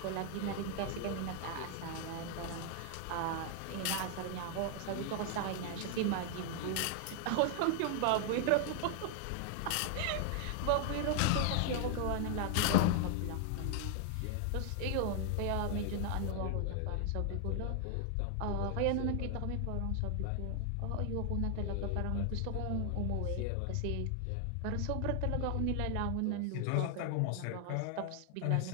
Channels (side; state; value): both; different; correlation 0.00